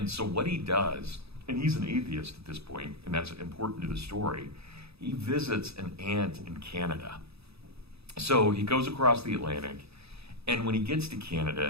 so what he does, and he's an atheist at this point, and that's important to the story, he visits an aunt in Canada. So he goes across the Atlantic, and when he gets to Canada,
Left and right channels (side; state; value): left; late; 0.78 ms